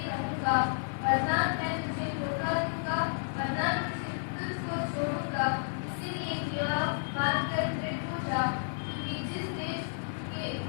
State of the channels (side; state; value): right; silent; 57 dB below the other